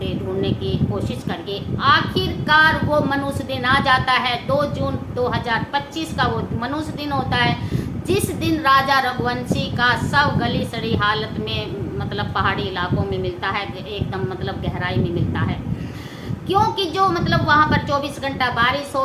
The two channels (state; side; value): identical; both; correlation 1.00